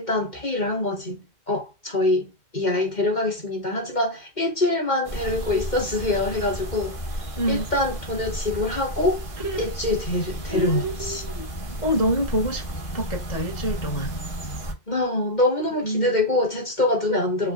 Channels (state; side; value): late; right; 2.1 ms